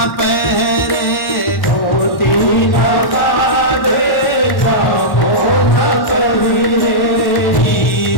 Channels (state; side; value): late; right; 1.1 ms